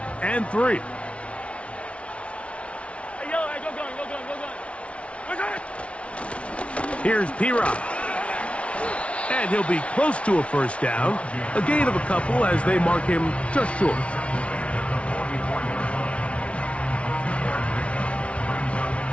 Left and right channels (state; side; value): late; right; 0.062 ms